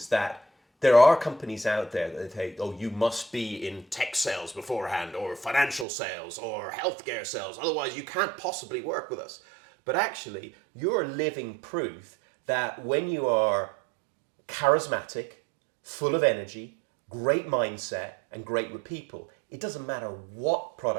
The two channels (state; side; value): drops out; left; at 5.9 s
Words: that there are companies out there that say, oh, you must be in tech sales beforehand, or financial sales, or healthcare sales, otherwise you can't possibly work with us. But actually, you're living proof that when you are charismatic, full of energy, great mindset, and great with people, it doesn't matter what